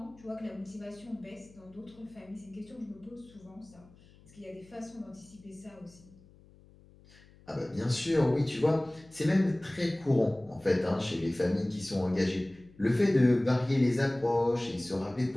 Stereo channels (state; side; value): noise; left; hum, 25 dB below the sound